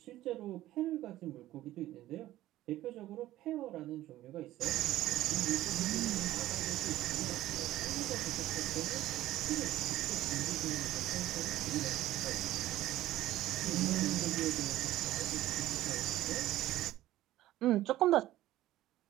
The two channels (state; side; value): quieter; left; 14.9 dB